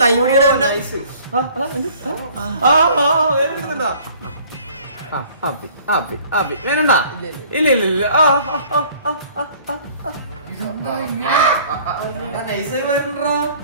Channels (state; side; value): inverted; both; correlation -0.53